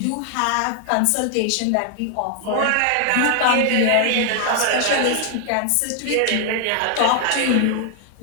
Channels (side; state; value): both; different; correlation 0.00